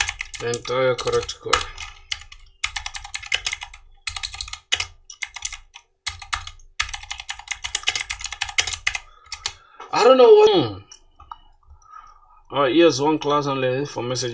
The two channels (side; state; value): both; identical; correlation 1.00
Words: the entire correct code. I don't know what. Yes, one class only for